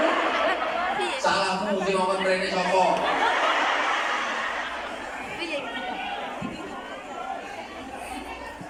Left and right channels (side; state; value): both; identical; correlation 1.00